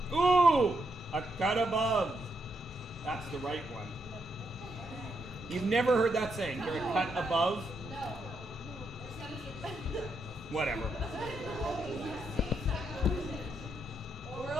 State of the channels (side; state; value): both; normal; correlation 0.80